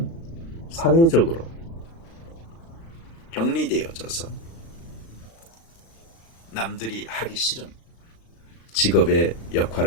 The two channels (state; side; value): late; right; 36 ms